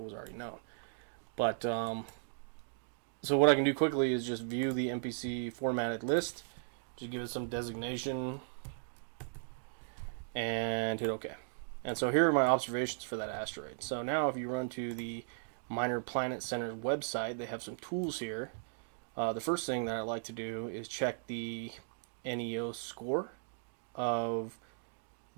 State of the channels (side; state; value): left; silent; digital silence